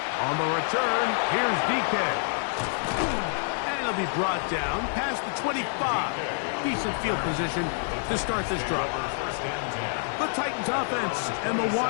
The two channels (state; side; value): silent; right; 60 dB below the other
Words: On the return, here's DK. And he'll be brought down past the 25. Decent field position to start this drive. The Titans offense and the